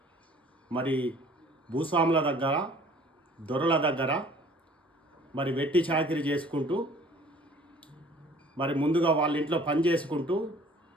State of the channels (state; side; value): normal; both; correlation 0.52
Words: మరి భూస్వాముల దగ్గర, దొరల దగ్గర మరి వెట్టి చాకిరి చేసుకుంటూ, మరి ముందుగా వాళ్ళ ఇంట్లో పని చేసుకుంటూ,